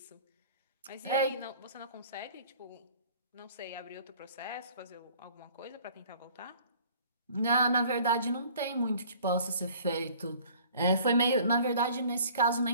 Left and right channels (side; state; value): both; inverted; correlation -0.51